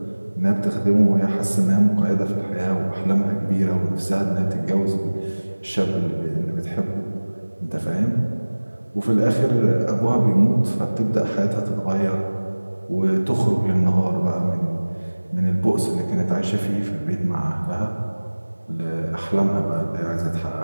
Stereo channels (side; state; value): both; inverted; correlation -1.00